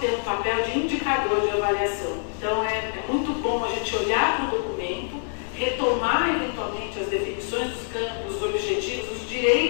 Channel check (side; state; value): right; silent; digital silence